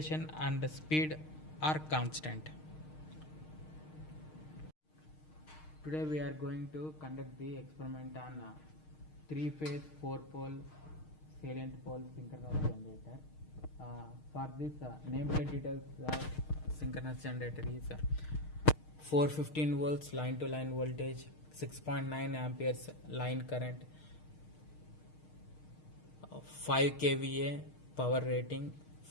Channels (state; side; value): late; right; 6.5 ms